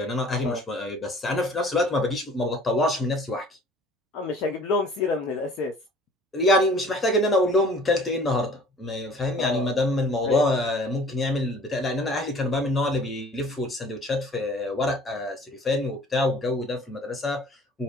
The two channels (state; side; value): normal; both; correlation 0.50